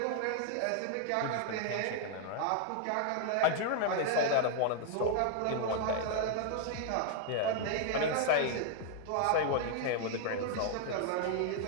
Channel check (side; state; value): both; different; correlation -0.01